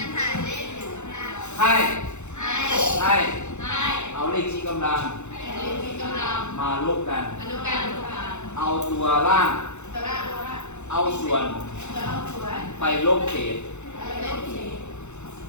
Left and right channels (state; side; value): late; right; 0.83 ms